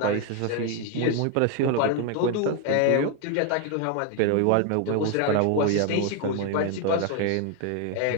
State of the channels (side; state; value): both; different; correlation 0.01